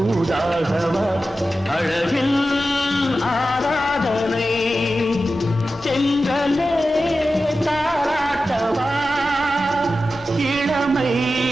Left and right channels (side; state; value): both; normal; correlation 0.93